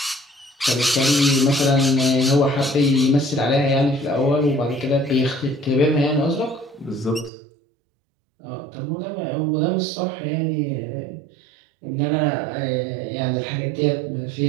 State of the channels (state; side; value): drops out; left; at 7.3 s